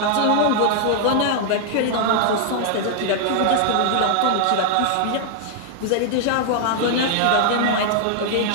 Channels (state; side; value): different; both; correlation -0.01